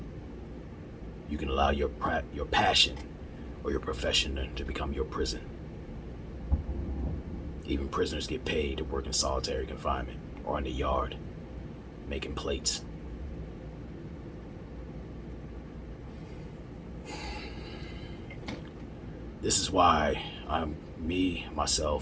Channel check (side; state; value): both; identical; correlation 1.00